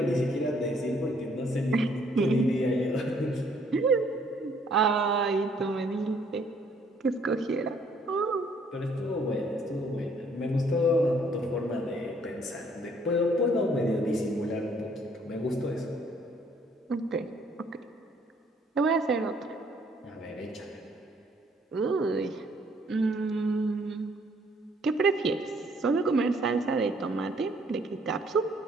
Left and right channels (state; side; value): normal; both; correlation 0.64